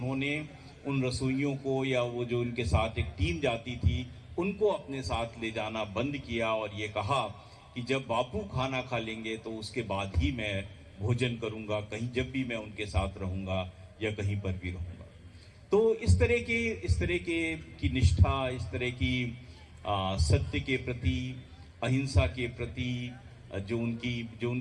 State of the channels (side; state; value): both; identical; correlation 1.00